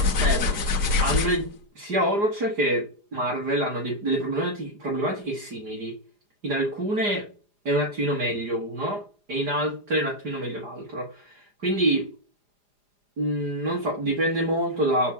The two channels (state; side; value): late; left; 4.9 ms